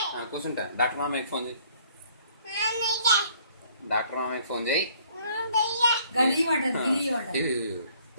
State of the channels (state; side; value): inverted; both; correlation -0.60